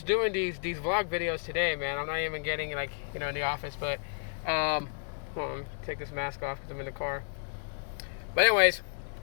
doing these vlog videos today, man. I'm not even getting in the office, but hold on, take this mask off because I'm in the car. But anyways,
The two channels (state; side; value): silent; right; 57 dB below the other